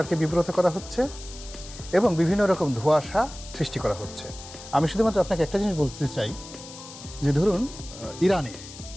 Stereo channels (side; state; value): left; noise; hiss, 15 dB below the sound